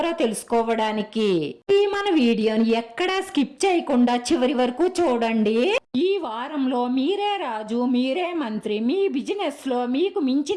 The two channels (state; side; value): identical; both; correlation 1.00